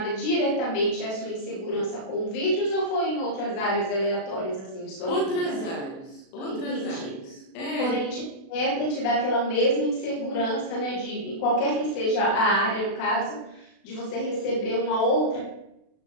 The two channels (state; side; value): late; right; 36 ms